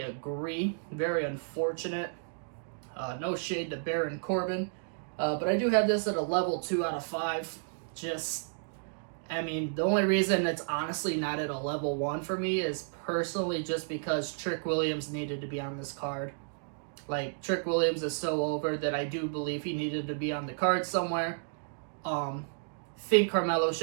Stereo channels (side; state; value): left; silent; digital silence